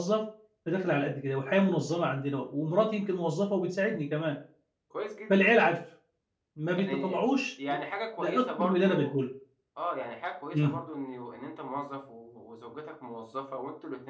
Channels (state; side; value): identical; both; correlation 1.00